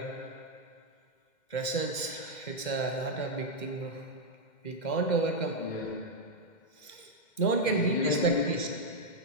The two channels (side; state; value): right; late; 2.1 ms